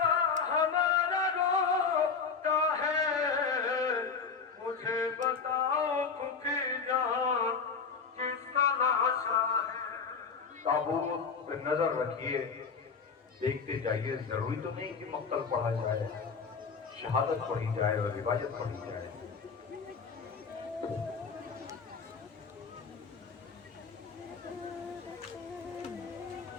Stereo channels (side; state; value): right; quieter; 5.5 dB